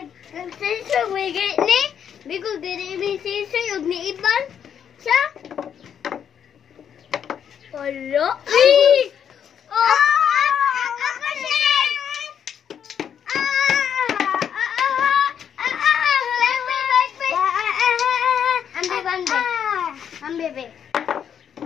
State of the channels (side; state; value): right; quieter; 8.4 dB